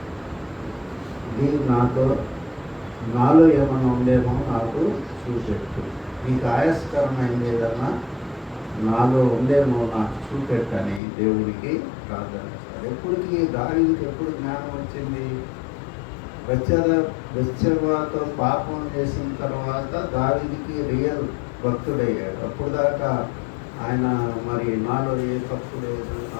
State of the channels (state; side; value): drops out; right; at 11.0 s